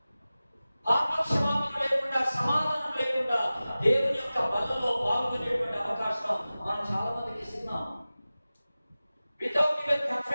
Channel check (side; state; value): both; inverted; correlation -0.96